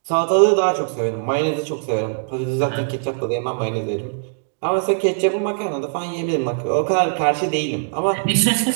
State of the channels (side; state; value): left; silent; digital silence